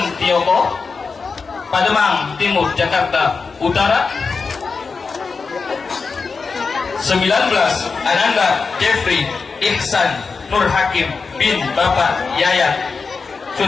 Pademang Timur Jakarta Utara. 19. Ananda Jeffrey Ihsan Nur Hakim bin Bapak Yayat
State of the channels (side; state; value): right; quieter; 4.8 dB